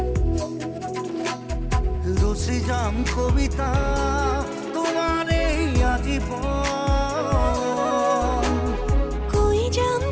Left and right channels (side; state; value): both; identical; correlation 1.00